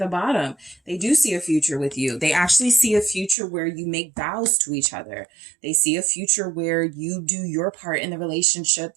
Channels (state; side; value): drops out; left; at 3.4 s